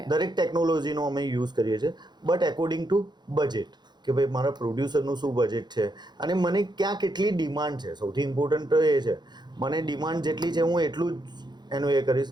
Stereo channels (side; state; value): left; late; 0.21 ms